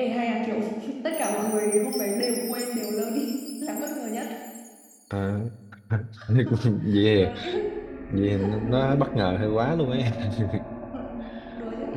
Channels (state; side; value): identical; both; correlation 1.00